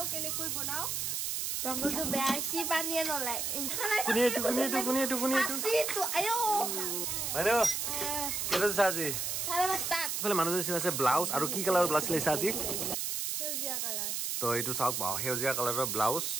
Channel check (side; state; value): right; noise; hiss, 1 dB below the sound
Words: কেনেকৈ বনাও তংগলটো বেয়াছি পানিয়ে নলাই কুনি আসিটো আয়ো মানে কেলে সাজি সারা স্টার্ট ফলে মানুহ আছে ব্লাউজ আৰু কি কালাৰৰ ব্লাউজ লৈছা আজি হেউজিয়া কালাৰ তো এইটো চাওক বাও হেউজিয়া কালাৰৰ blouse